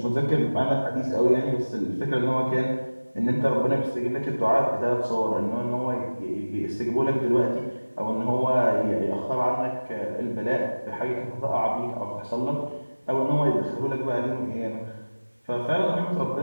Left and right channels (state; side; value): inverted; both; correlation -1.00